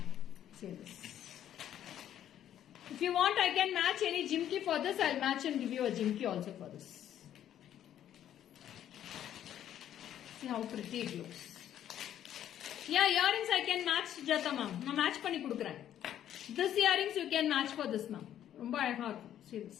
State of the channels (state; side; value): quieter; right; 10.9 dB